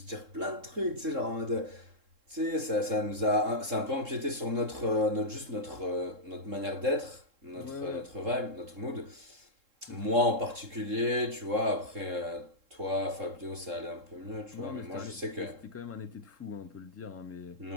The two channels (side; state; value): left; late; 3.7 ms